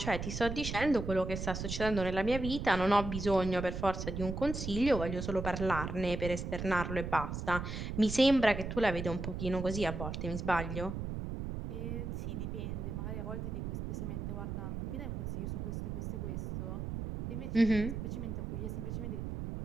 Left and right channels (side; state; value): right; noise; rumble, 5 dB below the sound